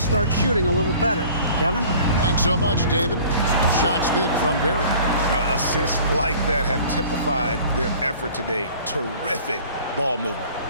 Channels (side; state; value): both; inverted; correlation -0.48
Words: shooting a little better. Kevin? Thanks so much, David. Shot's good from Barry. Assists like that have typified their effort today. Terrific ball movement.